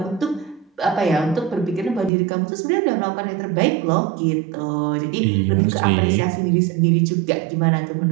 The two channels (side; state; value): left; drops out; at 2.1 s